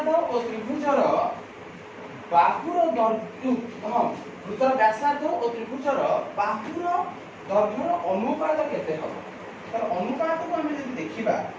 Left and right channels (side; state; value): both; identical; correlation 1.00